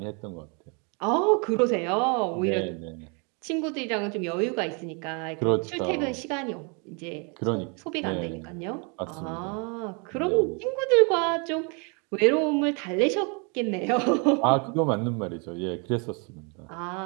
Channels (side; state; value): left; quieter; 34.6 dB